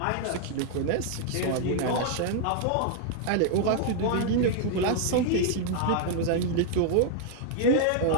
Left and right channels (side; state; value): both; different; correlation 0.00